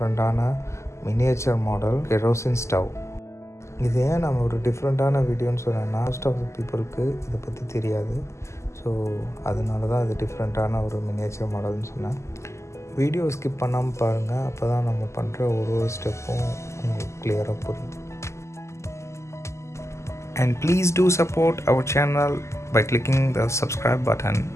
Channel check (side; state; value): right; late; 0.13 ms